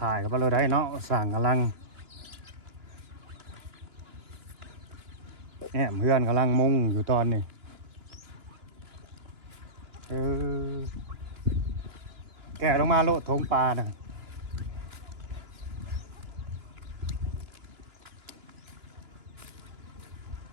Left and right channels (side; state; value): left; late; 2.9 ms